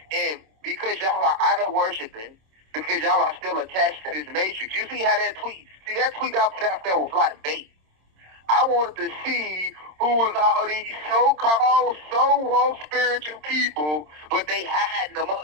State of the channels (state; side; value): late; left; 26 ms